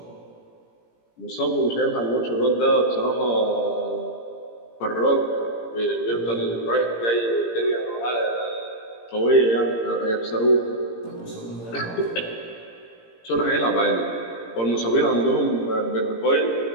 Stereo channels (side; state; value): right; late; 17 ms